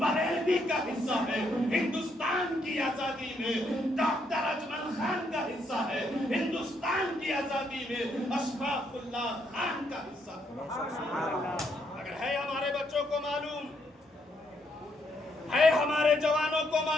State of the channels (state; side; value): normal; both; correlation 0.74